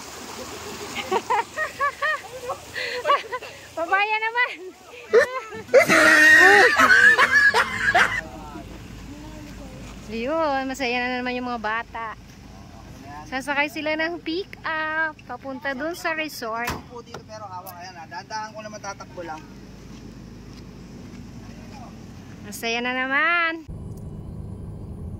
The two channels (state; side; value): identical; both; correlation 1.00